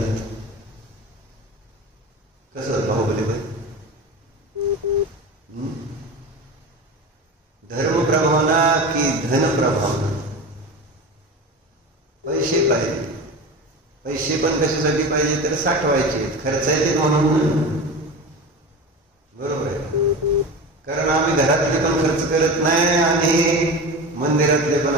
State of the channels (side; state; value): both; normal; correlation 0.29